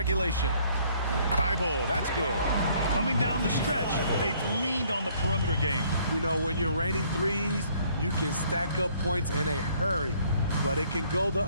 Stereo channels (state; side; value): inverted; both; correlation -0.62